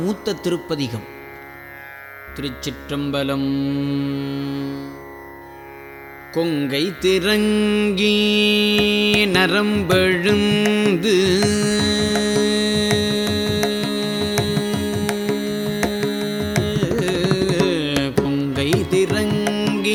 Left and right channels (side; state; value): both; identical; correlation 1.00